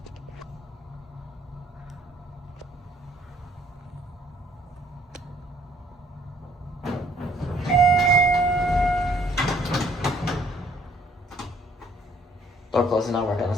Door closing not working on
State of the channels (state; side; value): normal; both; correlation 0.62